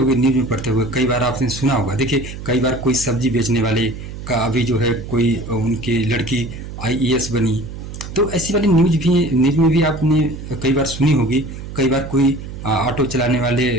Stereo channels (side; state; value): right; noise; hum, 10 dB below the sound